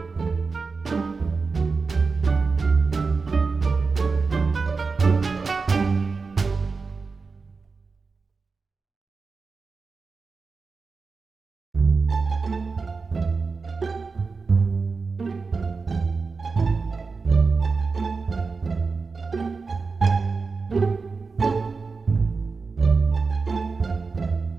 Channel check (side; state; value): left; quieter; 4.5 dB